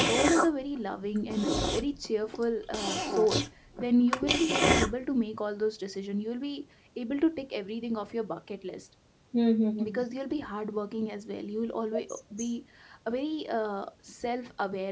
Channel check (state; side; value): identical; both; correlation 1.00